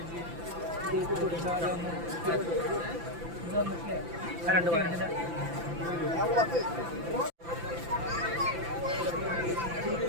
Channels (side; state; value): left; late; 5.9 ms